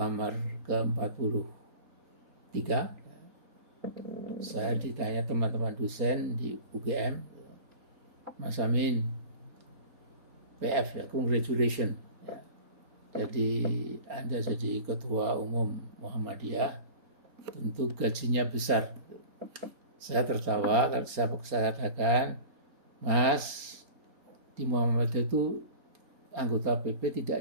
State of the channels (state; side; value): late; left; 4.3 ms